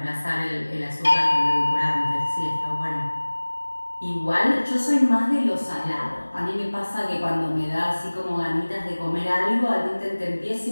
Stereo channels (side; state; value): both; inverted; correlation -1.00